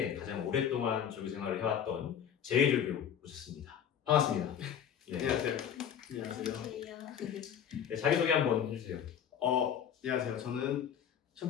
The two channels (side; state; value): right; quieter; 8.7 dB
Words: 가장 오랫동안 조교 생활을 해왔던 제이조교 모셨습니다. 반갑습니다. 네. 안녕하세요. 안녕하세요. 네, 자기소개 한번 해주세요. 안녕하세요. 저는